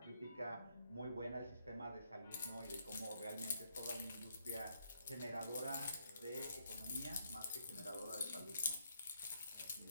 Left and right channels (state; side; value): inverted; both; correlation -0.74